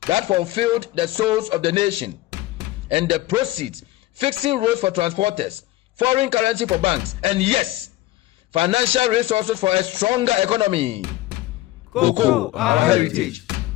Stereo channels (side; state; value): right; quieter; 16.7 dB